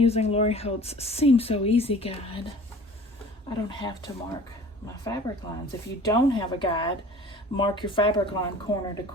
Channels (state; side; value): normal; both; correlation 0.45